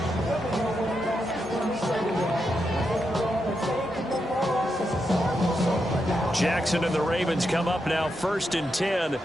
Jackson and the Ravens come up now 1st and 10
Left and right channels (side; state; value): both; normal; correlation 0.84